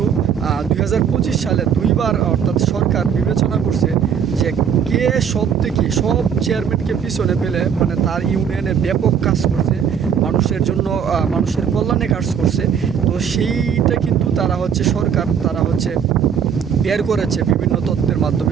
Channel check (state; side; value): quieter; left; 7.6 dB